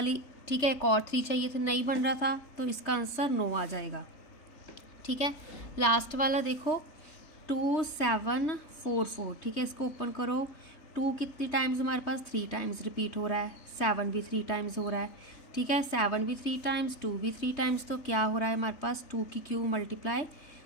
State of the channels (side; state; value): right; late; 3.3 ms